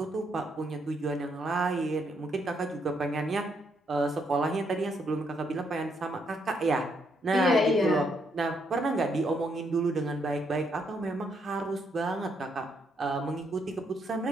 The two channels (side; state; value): both; normal; correlation 0.75